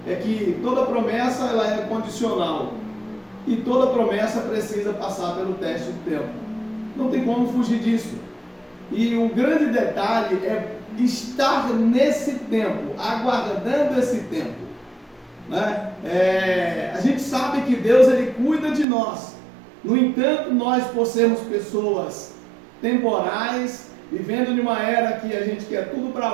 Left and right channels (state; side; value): drops out; left; at 18.9 s